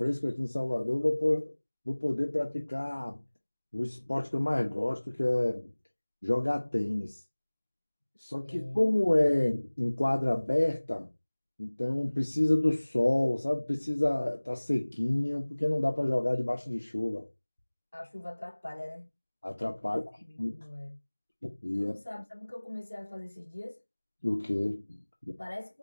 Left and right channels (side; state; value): both; inverted; correlation -1.00